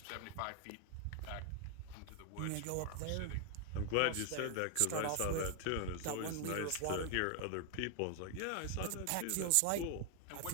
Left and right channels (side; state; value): both; different; correlation 0.00